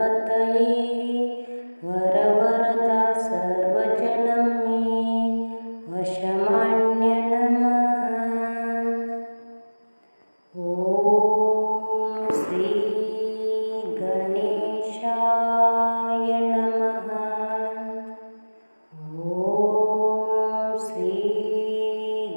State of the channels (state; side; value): inverted; both; correlation -1.00